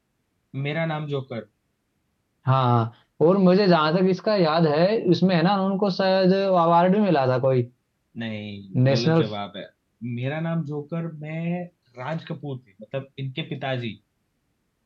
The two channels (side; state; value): both; identical; correlation 1.00